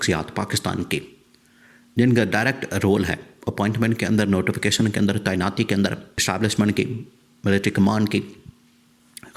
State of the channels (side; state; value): both; identical; correlation 1.00